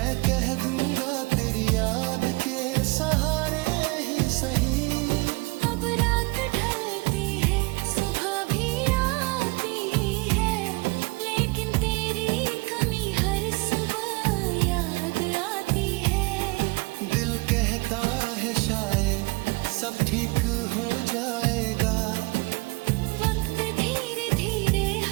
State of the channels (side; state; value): left; quieter; 26.1 dB